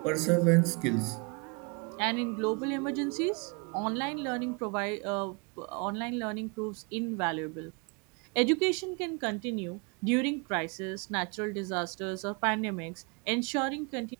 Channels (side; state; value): left; quieter; 32.0 dB